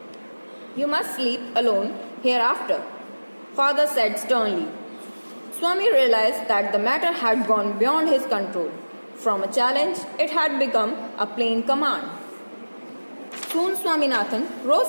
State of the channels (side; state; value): both; inverted; correlation -1.00